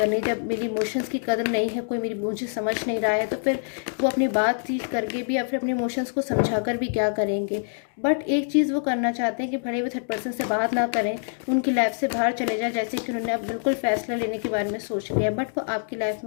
जब मेरी इमोशंस की कदर नहीं है, कोई मुझे समझ नहीं रहा है, तो फिर वो अपनी बातचीत करके भी या फिर अपने इमोशंस को समझा कर भी क्या करेंगे। बट एक चीज़ वो करना चाहते हैं कि भले वो थर्ड पर्सन से बात ना करें, उनकी लाइफ से बाहर चले जाए, जैसे कि उन्होंने अब बिल्कुल फैसला लेने के बारे में सोच लिया, बट वो आपकी लाइफ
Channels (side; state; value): right; silent; digital silence